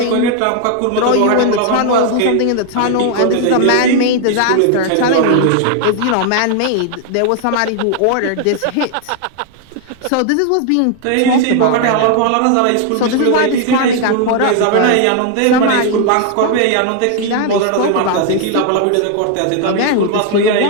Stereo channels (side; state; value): both; different; correlation 0.00